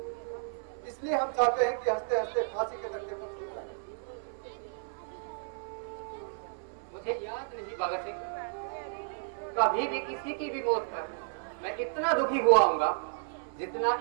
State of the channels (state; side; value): silent; left; 56 dB below the other